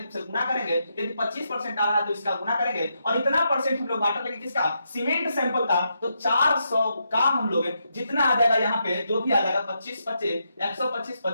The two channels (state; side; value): inverted; both; correlation -0.82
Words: से गुना करेंगे। यदि 25% आ रहा है तो इसका गुना करेंगे, और इतना परसेंट हम लोग वाटर लेंगे किसका? सीमेंट सैंपल का। तो 400 का हम लोग जितना आ जाएगा यहाँ पे जो भी आ जाएगा 25 25 125